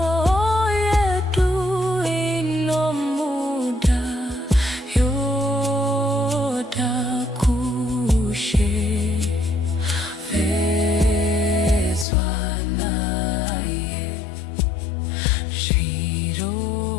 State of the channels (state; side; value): drops out; right; at 12.1 s